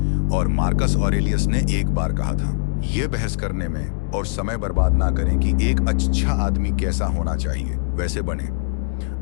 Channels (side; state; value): right; silent; digital silence